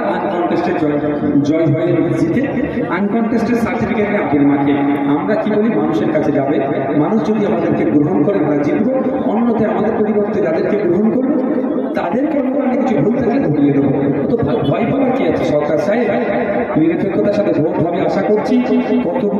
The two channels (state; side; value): identical; both; correlation 1.00